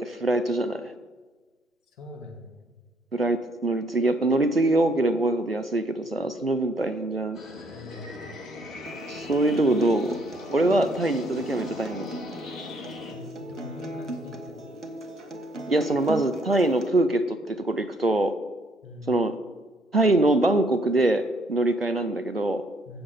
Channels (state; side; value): normal; both; correlation 0.68